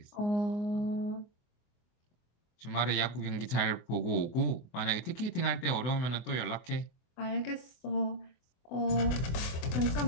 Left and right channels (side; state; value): right; late; 24 ms